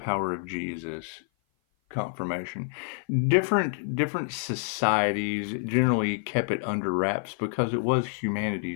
of Jesus. Confirmation. Different societies generally kept it under wraps because it was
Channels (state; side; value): silent; right; 55 dB below the other